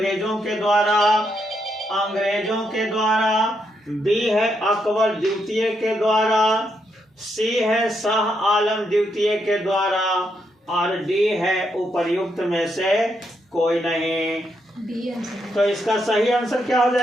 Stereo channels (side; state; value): both; normal; correlation 0.79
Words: के द्वारा, बी है अकबर द्वितीय के द्वारा, सी है शाह आलम द्वितीय के द्वारा और डी है उपर्युक्त में से कोई नहीं। तो इसका सही आंसर क्या हो